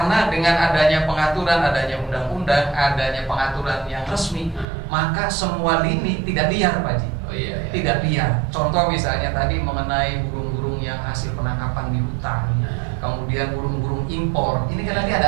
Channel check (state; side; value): drops out; left; at 4.7 s